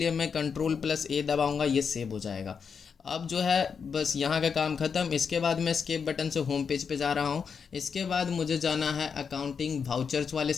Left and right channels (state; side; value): quieter; right; 6.2 dB